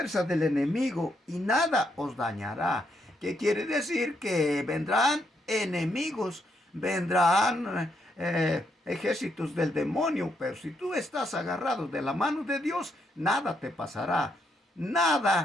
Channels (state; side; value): normal; both; correlation 0.77